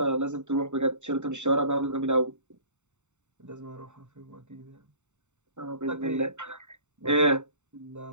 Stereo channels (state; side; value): late; left; 0.84 ms